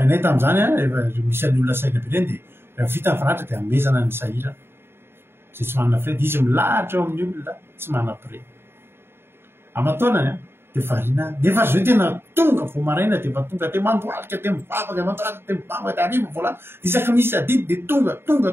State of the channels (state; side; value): late; left; 0.11 ms